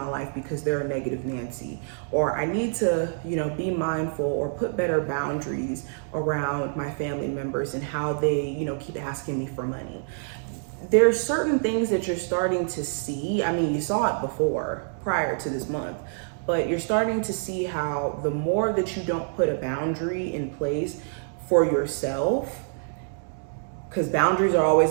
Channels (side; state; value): left; silent; digital silence